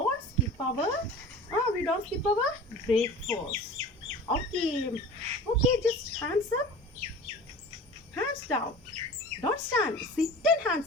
skip our breakfast. Okay. Okay, just hands up, hands down. Don't stand. Sit and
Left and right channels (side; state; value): both; normal; correlation 0.39